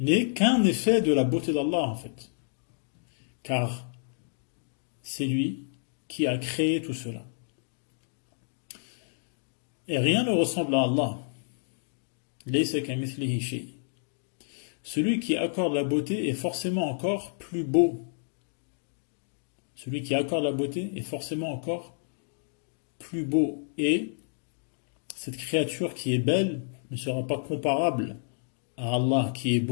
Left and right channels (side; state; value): right; silent; digital silence